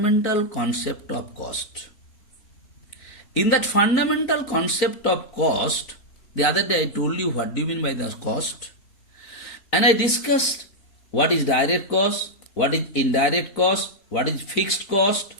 Concept of Cost. In that fundamental concept of cost, the other day I told you what do you mean by the cost, and I discussed what is direct cost, what is indirect cost, what is fixed cost,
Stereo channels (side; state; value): right; late; 4.0 ms